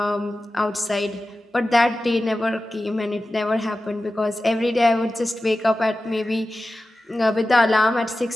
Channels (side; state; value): both; normal; correlation 0.94